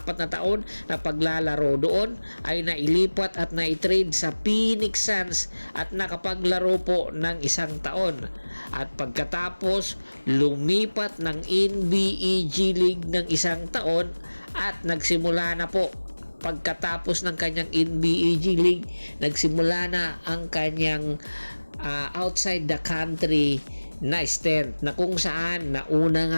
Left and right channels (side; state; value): both; inverted; correlation -1.00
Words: na taon na paglalaro doon ay nailipat at naitrade sa Phoenix Suns at nakapaglaro po ng 1 taon. At pagkatapos lumipat ng NBA G League ng 1 taon at nagsimula na po pagkatapos ng kanyang NBA G League, nagsimula na ang kanyang outside the country na stint na kung saan nauna